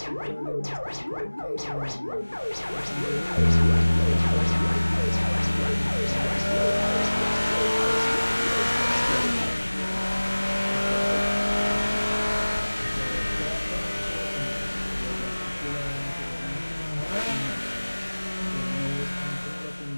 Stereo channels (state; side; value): inverted; both; correlation -1.00